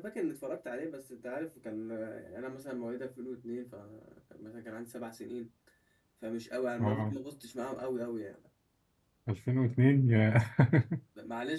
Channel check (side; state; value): both; identical; correlation 1.00